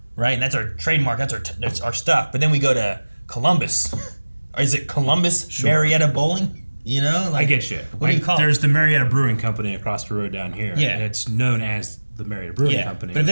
right, and that's our trademark, that's our stuff, but then we go to Columbus, or is it Columbus Marietta Bowling? Like, I get you. What do you call it? There's the Marietta Brewing Company across the road down here. Yeah. And it's known as the Marietta Brewing Company. But if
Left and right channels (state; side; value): inverted; both; correlation -1.00